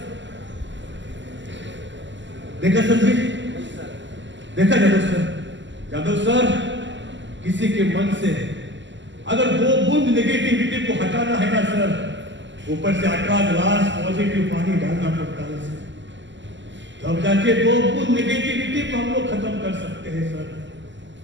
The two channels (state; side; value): late; left; 0.54 ms